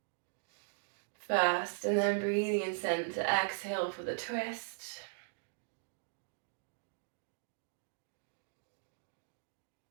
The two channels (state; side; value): silent; left; digital silence